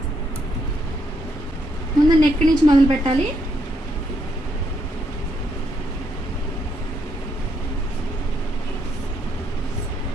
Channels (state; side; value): normal; both; correlation 0.76